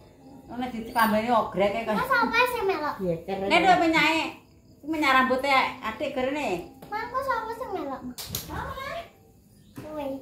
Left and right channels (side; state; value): both; identical; correlation 1.00